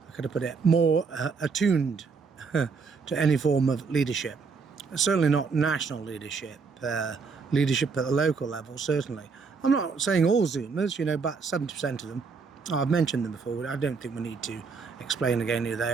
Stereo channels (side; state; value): left; quieter; 5.0 dB